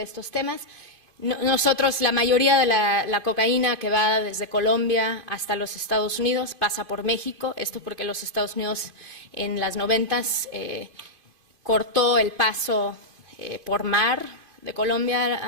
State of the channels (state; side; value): late; left; 2.6 ms